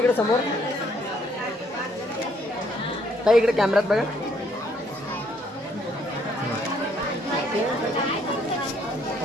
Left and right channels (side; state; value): both; normal; correlation 0.67